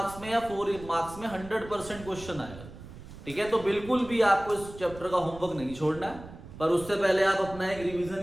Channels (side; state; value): right; noise; rumble, 15 dB below the sound